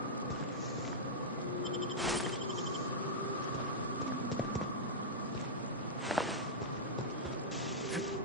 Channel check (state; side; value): normal; both; correlation -0.09